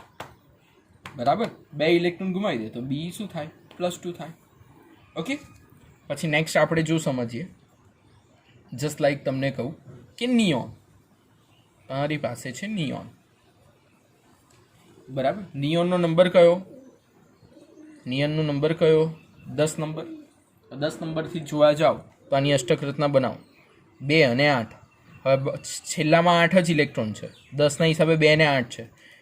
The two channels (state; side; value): identical; both; correlation 1.00